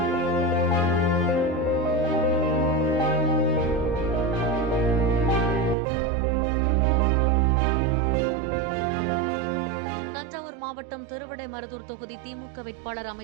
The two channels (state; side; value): drops out; left; at 5.8 s